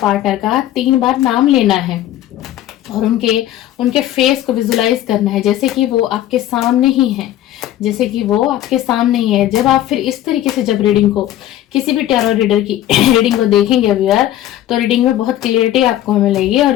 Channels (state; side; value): quieter; right; 13.1 dB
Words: का 3 बार नाम लेना है और उनके फेस को विजुलाइज करना है जैसे कि वो आपके सामने ही है, जैसे कि वो आपके सामने ही है। जब आप फिर इस तरीके से जब रीडिंग को किसी भी टैरो रीडर की रीडिंग को देखेंगे व्यूअर, तो रीडिंग में बहुत क्लियरिटी आपको मिलेगी और